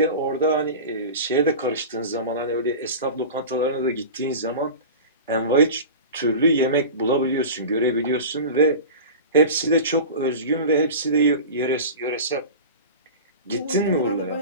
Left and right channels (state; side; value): inverted; both; correlation -0.32